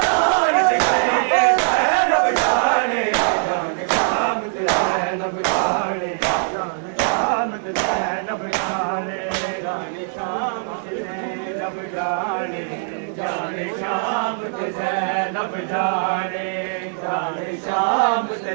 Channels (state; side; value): silent; left; digital silence